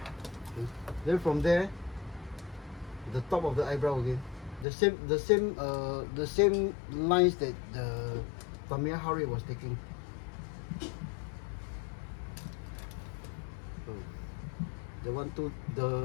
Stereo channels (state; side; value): drops out; right; at 4.7 s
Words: Then from there, the top of the eyebrow again, the same lines that the Tamiya Hari was taking. So